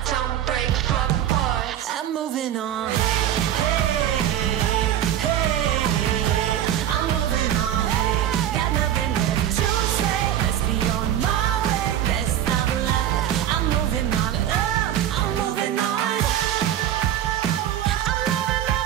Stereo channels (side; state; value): left; quieter; 11.1 dB